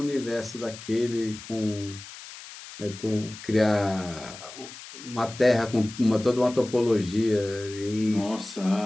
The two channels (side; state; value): left; noise; hiss, 15 dB below the sound